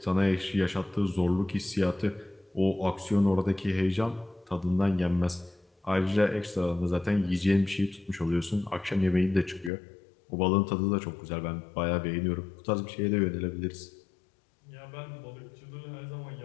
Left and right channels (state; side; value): drops out; right; at 9.7 s